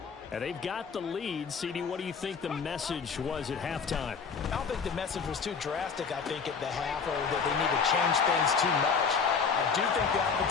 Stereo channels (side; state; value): right; quieter; 5.7 dB